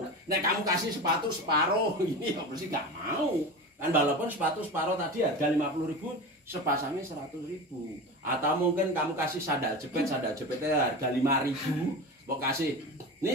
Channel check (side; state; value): both; normal; correlation 0.28